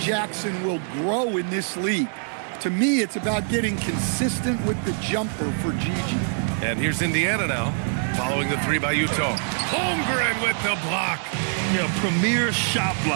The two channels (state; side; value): silent; left; 60 dB below the other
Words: will grow in this league. To me, it's about getting consistent with the jumper for Gigi. And here's Indiana now, following the 3 by Utah. Holmgren with the block. Yeah, premier shot